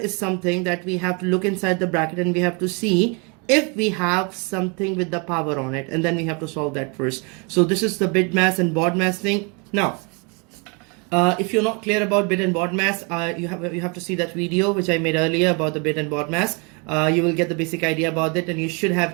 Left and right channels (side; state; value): left; quieter; 32.7 dB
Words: something that we have to look inside the bracket and we have to see if we have something with the power on it, and then we have to solve that first. So this is the bit mass and baud mass thing. Now, if you're not clear about bit and baud mass, you have to see that video which I made earlier about the bit and baud mass. You will get the basic idea about it, and you should